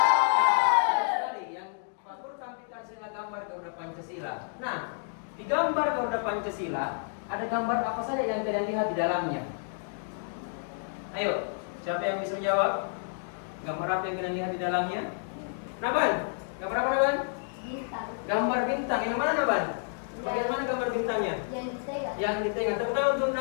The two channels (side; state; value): right; silent; digital silence